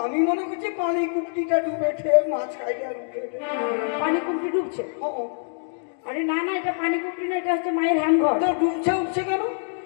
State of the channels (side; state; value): right; silent; digital silence